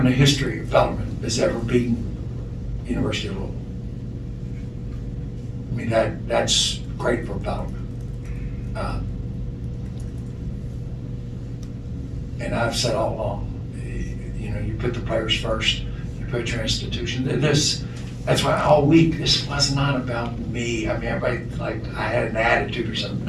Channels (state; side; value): identical; both; correlation 1.00